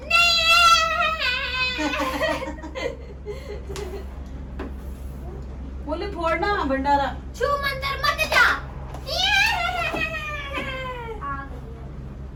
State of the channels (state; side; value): identical; both; correlation 1.00